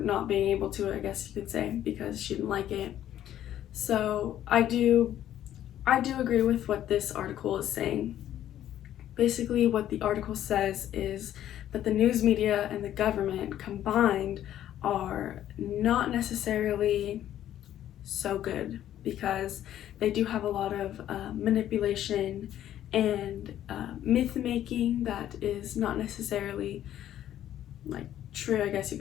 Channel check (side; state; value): right; quieter; 11.7 dB